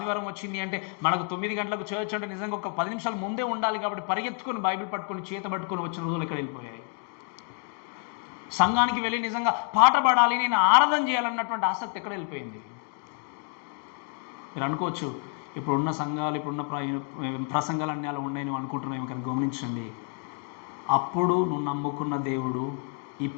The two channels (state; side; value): quieter; right; 39.9 dB